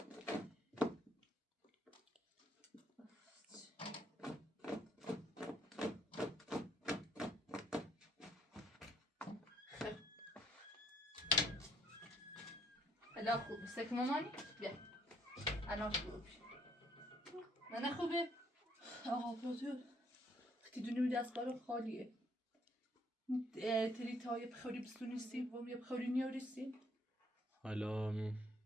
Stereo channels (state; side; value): normal; both; correlation 0.66